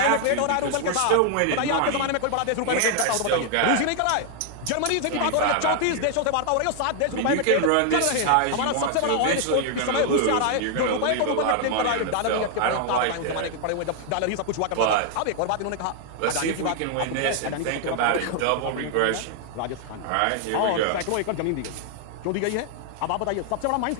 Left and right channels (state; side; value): different; both; correlation 0.00